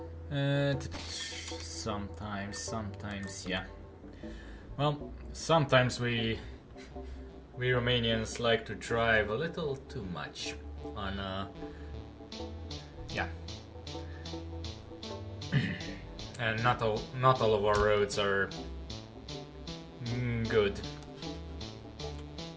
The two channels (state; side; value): identical; both; correlation 1.00